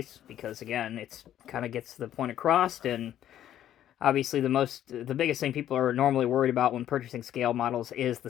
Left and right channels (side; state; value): right; quieter; 11.4 dB